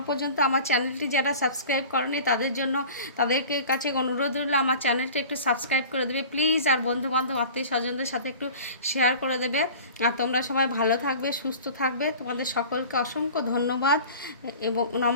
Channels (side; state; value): both; inverted; correlation -0.41